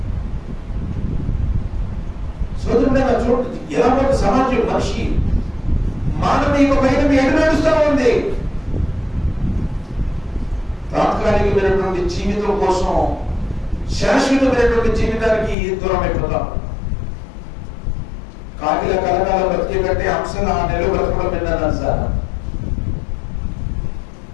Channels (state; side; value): drops out; right; at 15.6 s